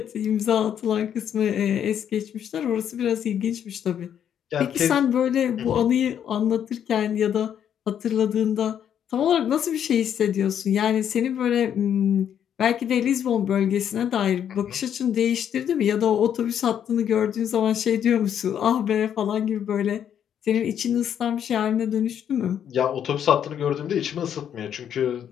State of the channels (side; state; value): right; quieter; 9.2 dB